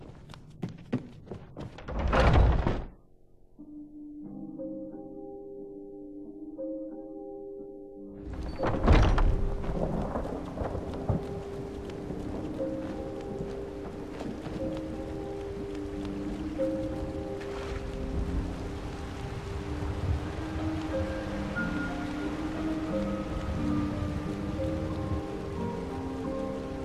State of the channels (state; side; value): identical; both; correlation 1.00